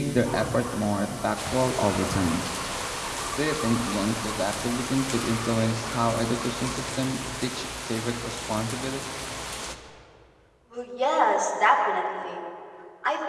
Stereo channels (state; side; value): identical; both; correlation 1.00